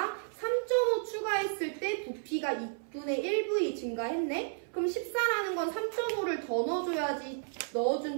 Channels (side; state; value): left; silent; 56 dB below the other